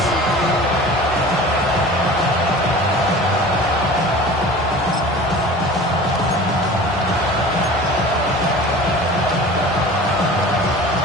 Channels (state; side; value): normal; both; correlation 0.40